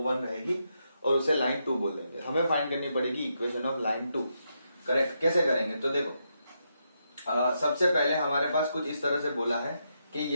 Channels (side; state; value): both; inverted; correlation -0.82